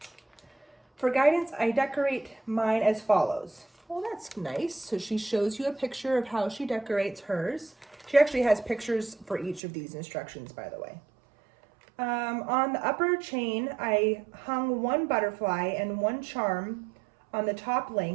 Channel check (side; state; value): left; drops out; at 9.6 s